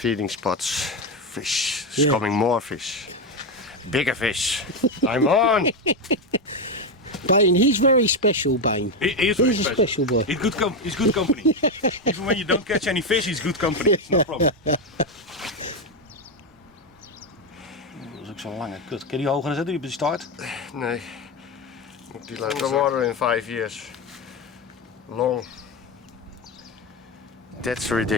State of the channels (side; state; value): both; normal; correlation 0.10